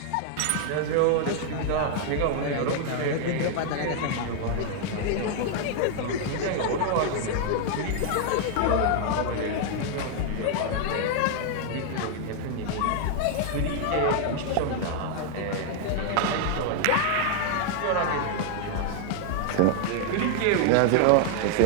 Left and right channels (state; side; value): different; both; correlation 0.00